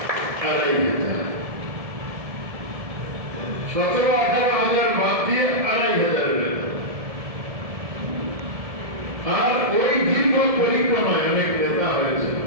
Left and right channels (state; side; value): late; left; 1.7 ms